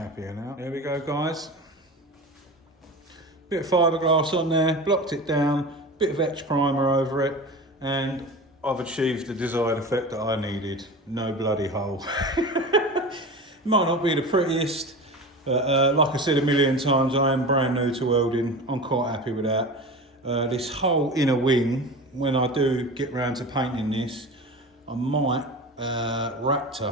now. There we go, guys. Bit of fiberglass on there, blocked it down, bit of etch primer over it, and I've achieved the desired effect that I needed. No bloody hole. Might not be the prettiest, but like I said a million times, I am brand new to welding. I'm quite happy with that. This whole inner wing, when I do get round to painting this, I might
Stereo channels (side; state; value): both; normal; correlation 0.31